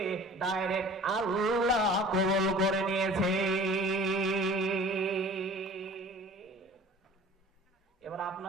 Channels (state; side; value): normal; both; correlation 0.45